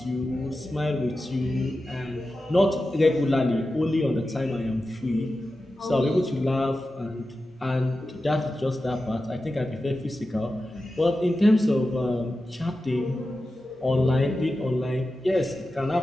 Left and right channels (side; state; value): both; normal; correlation 0.92